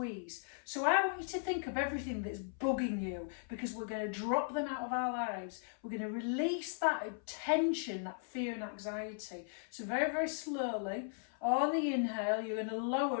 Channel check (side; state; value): right; silent; 53 dB below the other